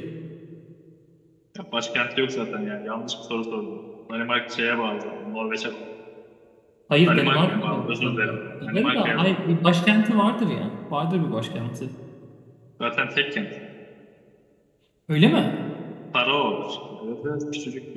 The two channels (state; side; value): identical; both; correlation 1.00